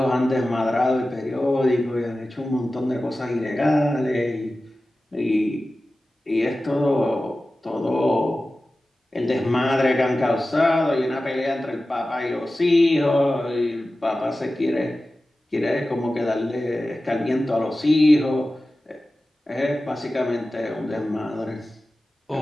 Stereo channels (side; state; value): both; normal; correlation 0.95